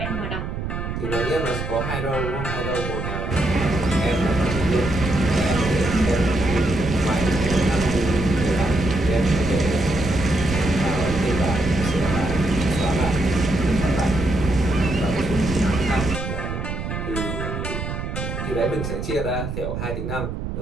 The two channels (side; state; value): right; noise; rumble, 5 dB below the sound